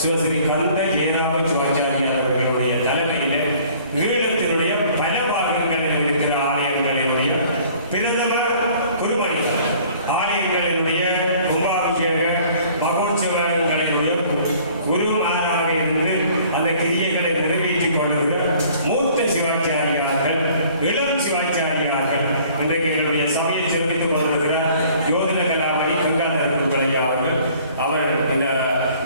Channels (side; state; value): both; inverted; correlation -0.54